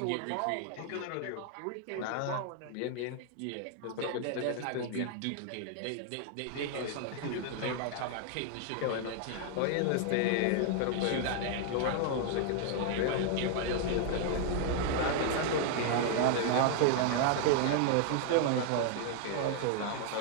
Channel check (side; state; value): both; different; correlation 0.00